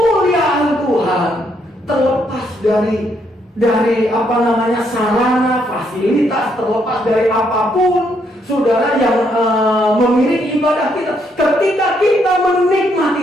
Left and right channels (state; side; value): normal; both; correlation 0.74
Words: Tuhan, terlepas dari sarana, fasilitas, terlepas dari apapun, saudara, yang mengiringi ibadah kita. Ketika kita